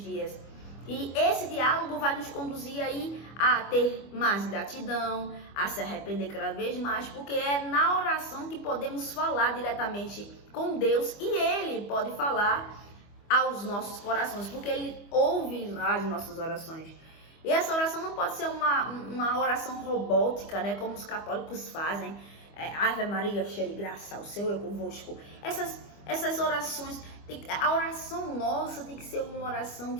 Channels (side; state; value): right; late; 25 ms